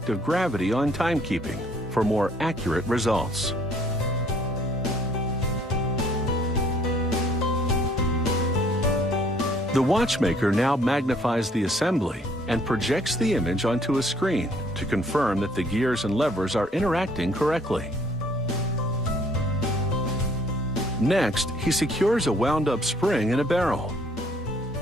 of gravity on timekeeping for more accurate results. The watchmaker now magnifies the assembly and projects the image onto a screen to confirm that the gears and levers are interacting correctly. Next, he secures a wound-up spring in a barrel.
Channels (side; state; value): both; normal; correlation 0.61